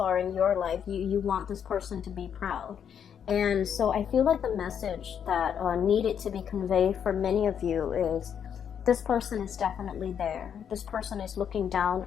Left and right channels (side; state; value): right; quieter; 8.2 dB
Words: in your life, you want this person to be proud. And so I feel like the message that needed to be conveyed for many of you is this person is definitely there. This person is looking down